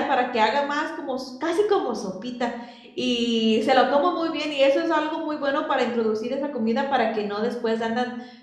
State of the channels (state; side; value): identical; both; correlation 1.00